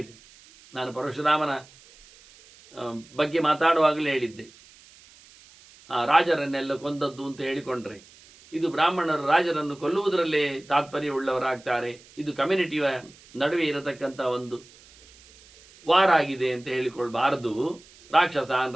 ನಾನು ಪರಶುರಾಮನ ಬಗ್ಗೆ ಮಾತಾಡುವಾಗಲೇ ಹೇಳಿದ್ದೆ, ರಾಜರನ್ನೆಲ್ಲ ಕೊಂದದ್ದು ಅಂತ ಹೇಳಿಕೊಂಡ್ರೆ ಇದು ಬ್ರಾಹ್ಮಣರು ರಾಜರನ್ನು ಕೊಲ್ಲುವುದರಲ್ಲೇ ತಾತ್ಪರ್ಯವುಳ್ಳವರಾಗ್ತಾರೆ. ಇದು ಕಮ್ಯುನಿಟಿಯ ನಡುವೆ ಇರತಕ್ಕಂಥ ಒಂದು ವಾರ ಆಗಿದೆ ಅಂತ ಹೇಳಿಕೊಳ್ಬಾರದು. ರಾಕ್ಷಸಾನ್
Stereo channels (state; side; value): noise; right; hiss, 25 dB below the sound